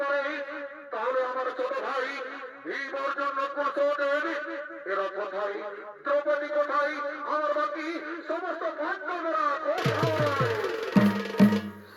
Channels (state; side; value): identical; both; correlation 1.00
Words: পারে, তাহলে আমার ছোট ভাই ভীম অর্জুন কুশলের এরা কোথায়? দ্রৌপদী কোথায়? আমার বাকি সমস্ত পাণ্ডবরা কোথায়?